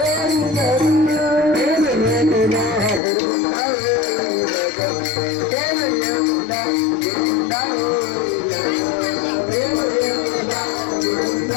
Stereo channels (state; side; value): drops out; right; at 3.0 s